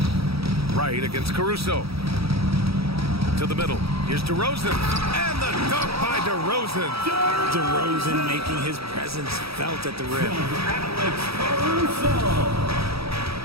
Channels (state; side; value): late; left; 0.77 ms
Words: Wright against Caruso. To the middle. Here's DeRozan. And the dunk by DeRozan. DeRozan making his presence felt at the rim.